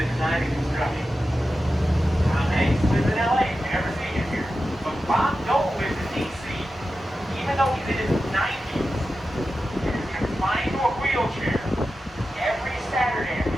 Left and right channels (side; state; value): both; normal; correlation 0.92